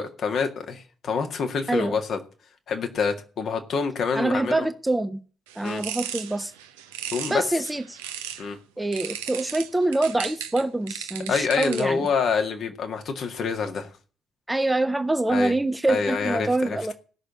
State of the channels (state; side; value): normal; both; correlation 0.83